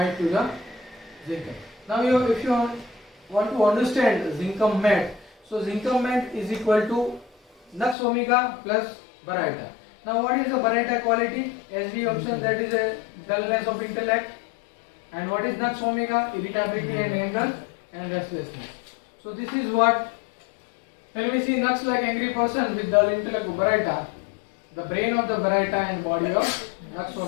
to the Zincum. Now if you want to understand Zincum mat, so Zincum mat is equal to Nux omega plus Baryta. Now what is the Baryta quality? As we observed, that is a dullness of intellect. And what is Nux omega? Irritability and anger and restlessness. So this is what, when we see Nux like angry person with dull intellect of Baryta, the brain of the Baryta and body of Nux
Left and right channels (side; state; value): right; drops out; at 8.0 s